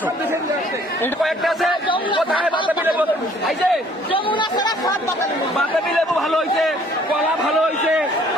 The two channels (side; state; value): both; normal; correlation 0.59